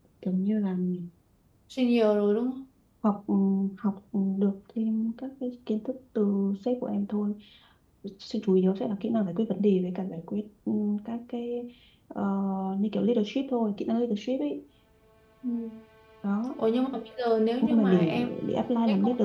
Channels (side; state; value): both; identical; correlation 1.00